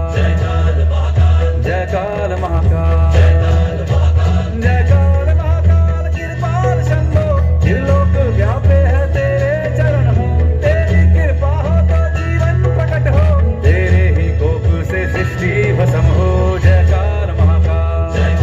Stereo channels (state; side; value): identical; both; correlation 1.00